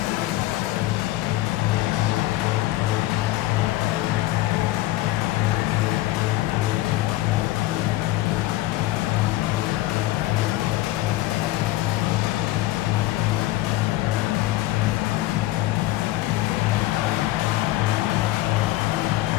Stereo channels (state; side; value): quieter; right; 17.1 dB